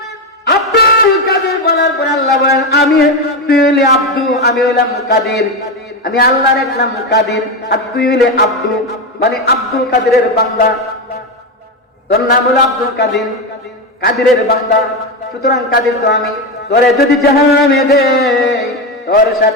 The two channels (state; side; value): normal; both; correlation 0.13